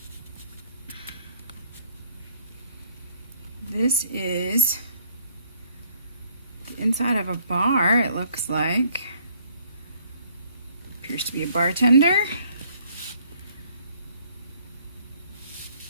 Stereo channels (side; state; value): both; inverted; correlation -0.62